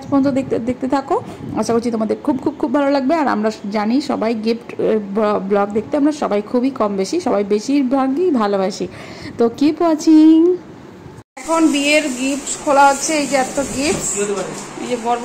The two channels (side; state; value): both; identical; correlation 1.00